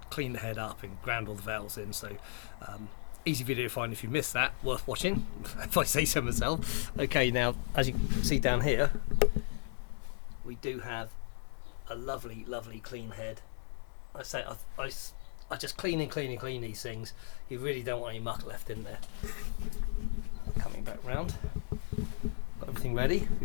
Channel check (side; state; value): right; silent; 54 dB below the other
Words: cleaned the head up and ground all the valves in, so easy video to find if you missed that, worth watching, if I say so myself. Okay, now as you can see down here, we do have a lovely clean head. I say I just clean these things. You really don't want any muck left in there. Coming back round, got everything ready.